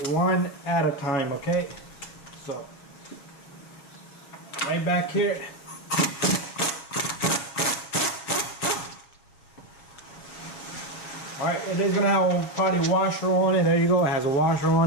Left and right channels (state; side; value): late; right; 7.0 ms